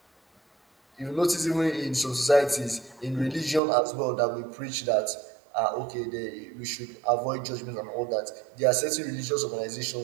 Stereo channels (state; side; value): drops out; left; at 3.6 s